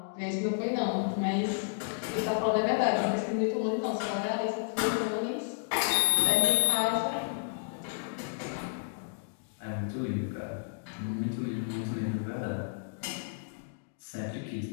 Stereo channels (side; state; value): right; silent; digital silence